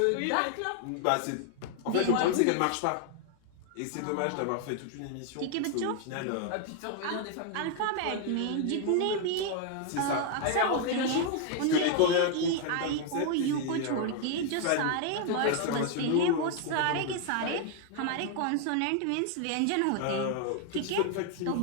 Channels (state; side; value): different; both; correlation 0.00